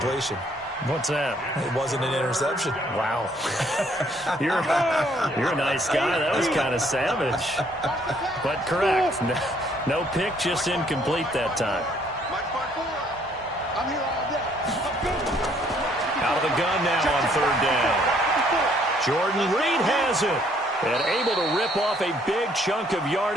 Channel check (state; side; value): normal; both; correlation 0.65